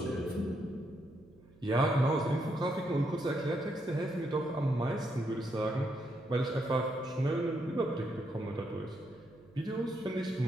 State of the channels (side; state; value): right; noise; hum, 25 dB below the sound